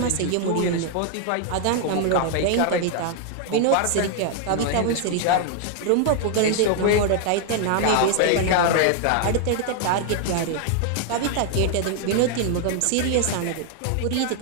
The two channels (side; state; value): both; different; correlation 0.00